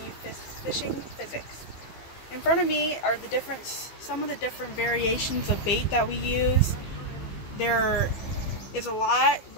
you fishing physics. In front of me are some of the different variations of bait that we use. There is a lot,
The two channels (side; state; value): right; late; 15 ms